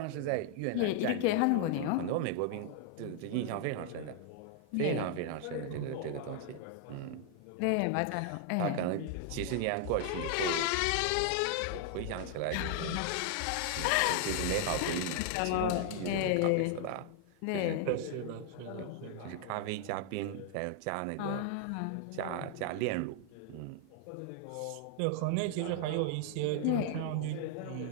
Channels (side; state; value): both; different; correlation 0.00